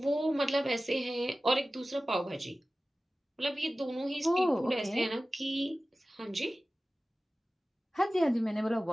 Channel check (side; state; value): both; normal; correlation 0.96